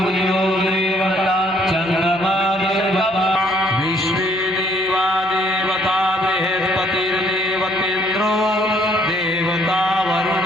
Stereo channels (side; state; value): left; noise; hum, 26 dB below the sound